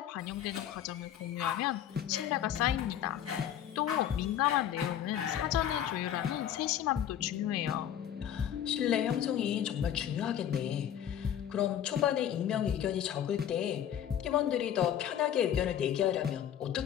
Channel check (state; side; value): quieter; right; 10.2 dB